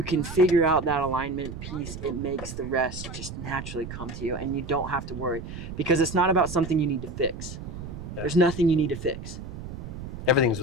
can figure out that alignment piece, it makes the rest just naturally come to you and you don't have to worry because it's not about something you need to fix. Yeah. There's nothing you need to fix. Everything's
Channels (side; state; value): right; noise; rumble, 9 dB below the sound